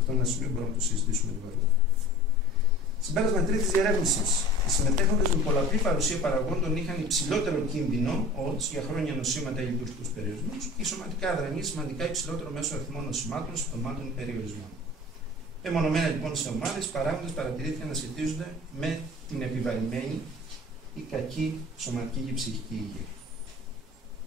είναι ένα σημείο που μπορούμε να το συζητήσουμε λίγο αργότερα. Συμπέρασμα τρίτης διερεύνησης. Οι συμμετέχοντες με πολλαπλή παρουσία παραγόντων είχαν υψηλότερο κίνδυνο odds για χρόνια νοσήματα ή λειτουργικούς περιορισμούς ή σωματικά αδρανή σημαντικά υψηλότερο μέσο αριθμό νοσημάτων, συμπτωμάτων ή περιορισμών. Μεμονωμένα λοιπόν σε ομάδες, οι παράγοντες παρατηρήθηκαν να σχετίζονται με την επιβαρημένη η κακή σωματική και ψυχική υγεία.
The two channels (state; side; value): normal; both; correlation 0.41